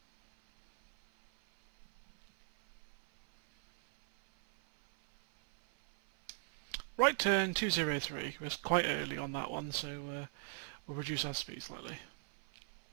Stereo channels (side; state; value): left; silent; 52 dB below the other